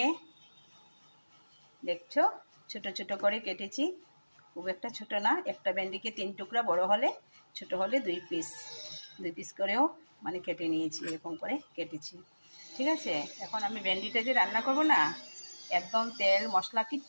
দেখছো ছোট ছোট করে কেটেছি। খুব একটা ছোট না, একটা ভেন্ডিকে 3 টুকরা, বড় হলে ছোট হলে 2 পিস করেও মানে কেটে নিয়েছি, এরকম করে কেটেছি। ঠিক আছে, এখন আমি ভেন্ডিটা যে রান্না করব না, একদম তেল মশলা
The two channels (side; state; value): both; inverted; correlation -1.00